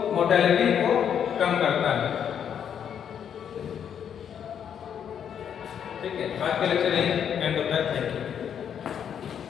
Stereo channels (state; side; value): quieter; right; 8.5 dB